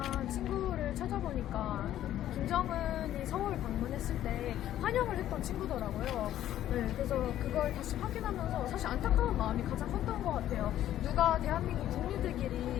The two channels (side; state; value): right; quieter; 12.3 dB